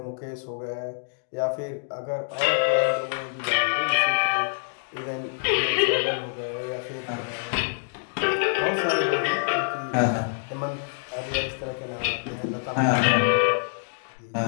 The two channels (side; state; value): right; silent; digital silence